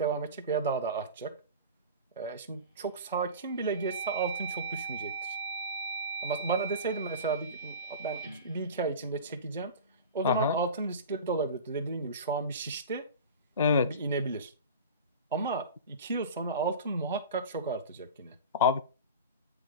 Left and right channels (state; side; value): inverted; both; correlation -0.32